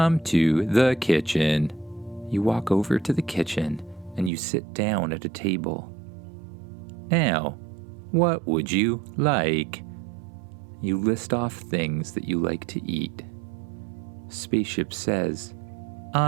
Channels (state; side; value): drops out; left; at 4.3 s